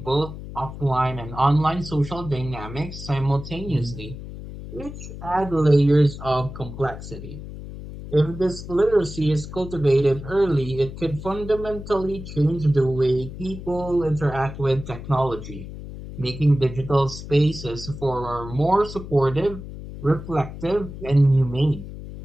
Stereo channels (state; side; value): noise; left; hum, 11 dB below the sound